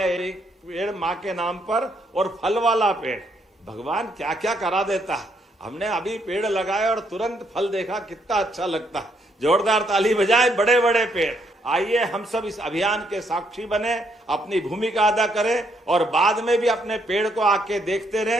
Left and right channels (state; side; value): normal; both; correlation 0.73